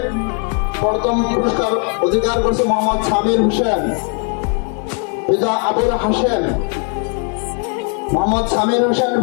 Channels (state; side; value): quieter; right; 40.0 dB